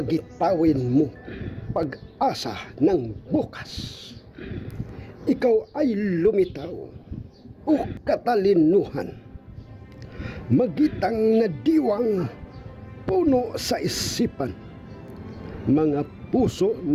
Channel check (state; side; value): identical; both; correlation 1.00